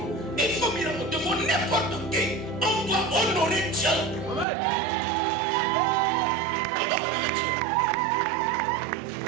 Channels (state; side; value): drops out; left; at 4.5 s